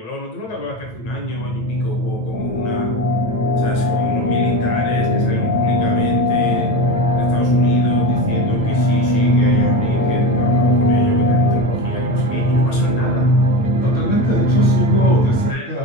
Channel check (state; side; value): late; right; 9.1 ms